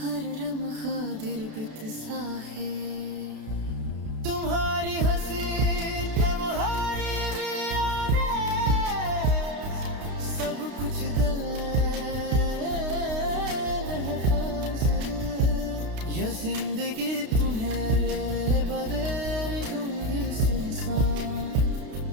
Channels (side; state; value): left; late; 32 ms